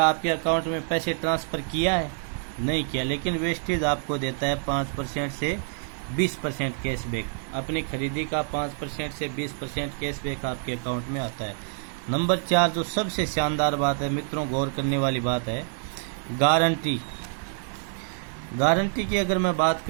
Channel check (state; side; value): silent; left; 60 dB below the other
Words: आपके अकाउंट में पैसे ट्रांसफ़र किया है? नहीं किया। लेकिन वेस्टेज आपको देता है 5% से 20% कैशबैक। अपनी खरीदी का 5% से 20% कैशबैक आपके अकाउंट में आता है। नंबर 4 जो सबसे शानदार बात है मित्रों, गौर करने वाली बात है, गारंटी। गारंटी की अगर मैं बात